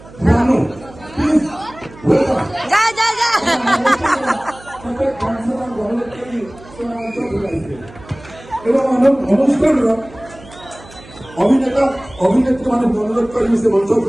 अभिनेता अभिनेत्री मान अनुरोध करेंगे से मंच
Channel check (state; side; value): noise; right; hum, 21 dB below the sound